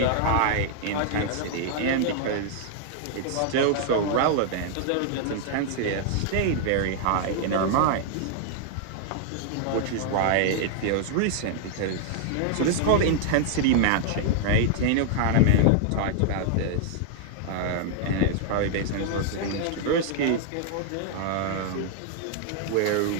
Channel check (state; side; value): different; both; correlation -0.01